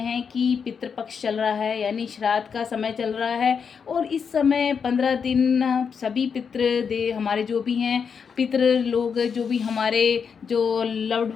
कि पितृपक्ष चल रहा है, यानी श्राद्ध का समय चल रहा है। और इस समय 15 दिन सभी पितृ दे हमारे जो भी हैं पितृ लोग, जो भी हमारे जो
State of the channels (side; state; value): right; quieter; 6.4 dB